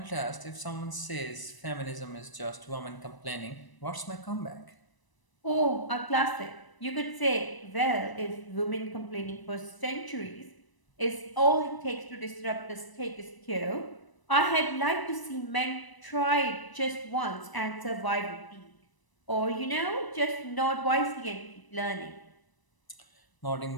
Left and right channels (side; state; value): right; late; 1.0 ms